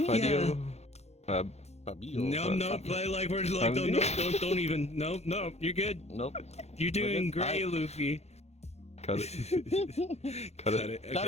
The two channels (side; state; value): right; late; 0.31 ms